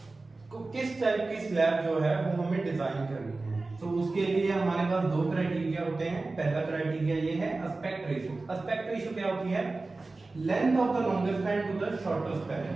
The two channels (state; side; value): quieter; left; 3.4 dB